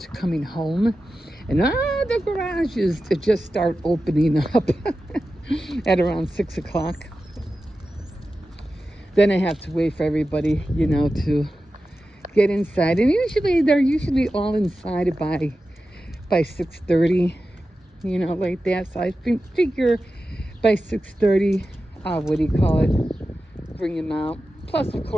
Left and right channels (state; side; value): normal; both; correlation 0.93